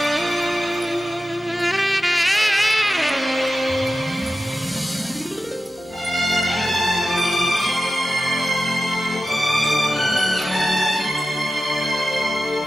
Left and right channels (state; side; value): normal; both; correlation 0.92